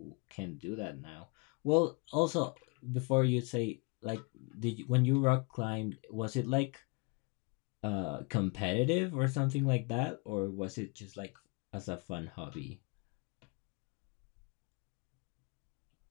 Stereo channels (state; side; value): quieter; right; 32.0 dB